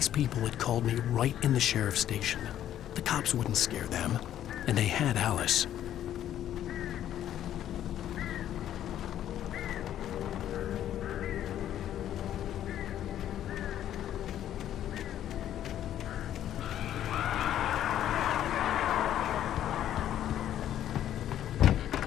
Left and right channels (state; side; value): quieter; right; 11.3 dB